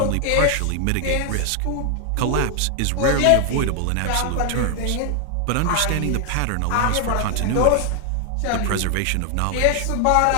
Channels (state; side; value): different; both; correlation 0.00